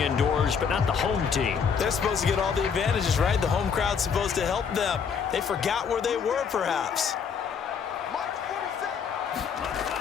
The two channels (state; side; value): quieter; right; 6.5 dB